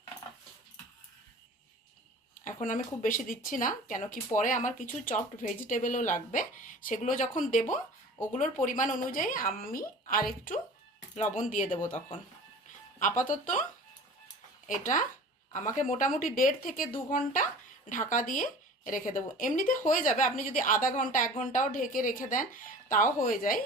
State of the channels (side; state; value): both; normal; correlation 0.41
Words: এখন আমি খুব বেশি দিচ্ছি না, কেন কি পরে আমার কিছু চপড ভেজিটেবলও লাগবে, সেগুলো যখন দেব ওগুলোর পরিমাণ অনুযায়ী আমি আর একটু লবণ দিয়ে দেব তখন। আপাতত এটা আমাকে মোটামুটি 1.5 থেকে 2 ঘন্টা ঢাকা দিয়ে রেখে দেবো। এমনিতে হয়ে যাবে, আপনি যদি আধা ঘন্টা 1 ঘন্টাও ঢেকে রেখে দেন তাও হয়ে যায়।